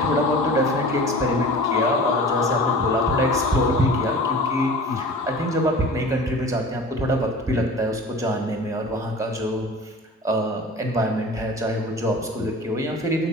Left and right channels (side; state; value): both; normal; correlation 0.39